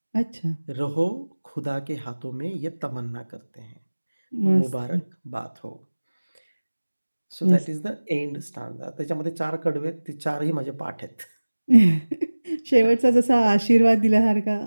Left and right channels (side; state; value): both; inverted; correlation -1.00